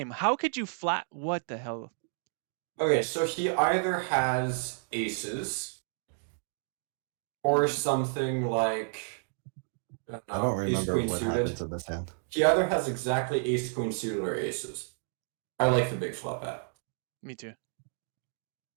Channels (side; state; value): left; silent; 57 dB below the other